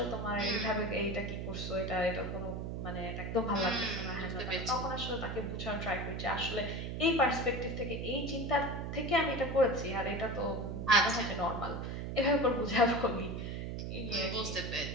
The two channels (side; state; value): right; noise; hum, 4 dB below the sound